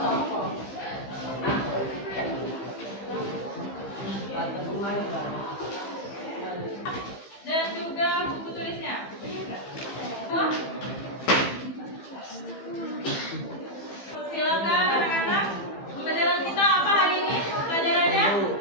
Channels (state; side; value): late; right; 15 ms